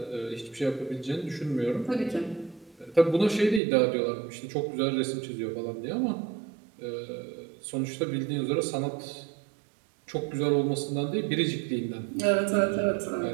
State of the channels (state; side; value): drops out; left; at 3.6 s